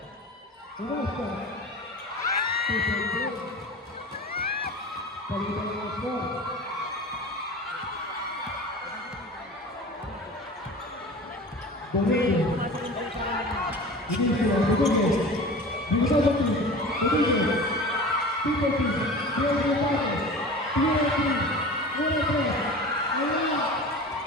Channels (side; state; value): both; normal; correlation 0.36